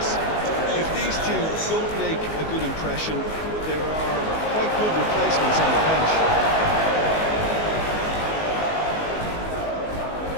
If these two don't make a good impression, there are quite good replacements on the bench.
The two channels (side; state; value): right; late; 19 ms